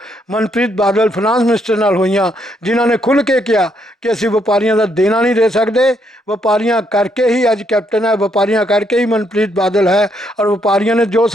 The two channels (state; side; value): normal; both; correlation 0.74